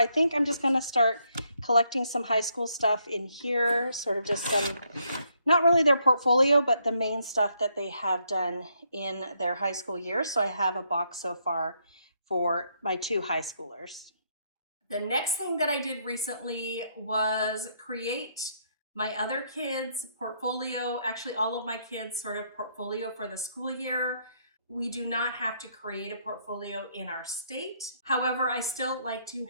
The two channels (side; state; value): both; inverted; correlation -0.73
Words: think I'm just gonna start collecting some high school stuff in here, sort of just some, not really their portfolio, but the main stuff that they have done in their high school year. So I have a box so far for my 2 high schoolers. The next thing that I did recently was create my other kids' portfolio, actually all of my kids' sort of portfolio for the school year. We do not have to create a portfolio in our state. However, I still like to